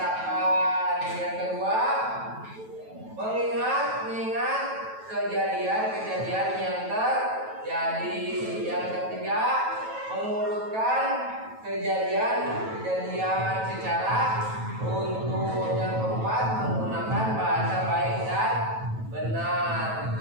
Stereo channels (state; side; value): late; left; 9.2 ms